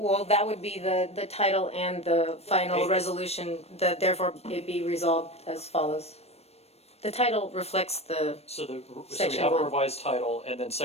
that would be the title and the final resolution, therefore it be resolved as follows. The title reflects So we Section have a 1. revised title and then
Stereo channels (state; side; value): late; right; 0.30 ms